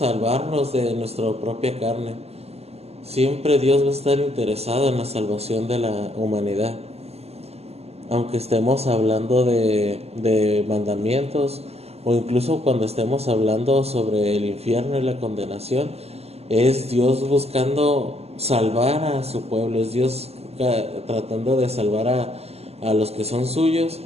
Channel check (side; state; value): left; late; 0.30 ms